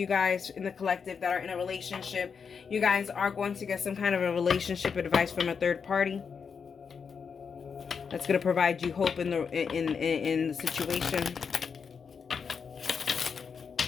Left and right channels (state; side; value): quieter; right; 6.1 dB